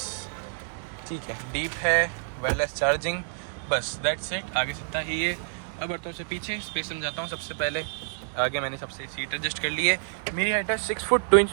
ठीक है, डीप है, वायरलेस चार्जिंग, बस दैट्स इट। आगे से इतना ही है। अब बढ़ता से पीछे स्पेस समझाता हूँ। सबसे पहले आगे मैंने सबसे सीट एडजस्ट कर ली है। मेरी हाइट है 6 फुट 2 इंच,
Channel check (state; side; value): silent; left; digital silence